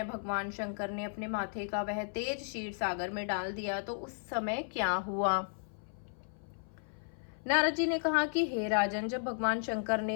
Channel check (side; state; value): right; silent; 55 dB below the other